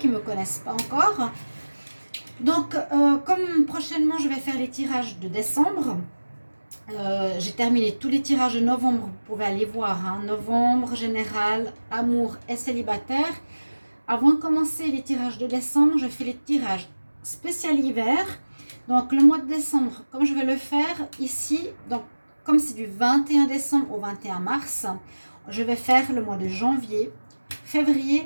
ne me connaissent pas encore. Donc comme prochainement je vais faire les tirages de décembre, j'ai terminé tous les tirages de novembre, vous pouvez aller voir, hein. Novembre, général, amour et célibataire. Avant de commencer les tirages de décembre, je fais les tirages spécial hiver. Donc le mois de décembre, comme je vais le faire ici, donc comme c'est du 21 décembre au 21 mars, je vais faire le mois de janvier,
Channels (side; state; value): both; inverted; correlation -1.00